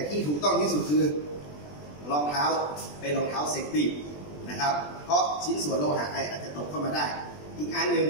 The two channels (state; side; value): late; right; 20 ms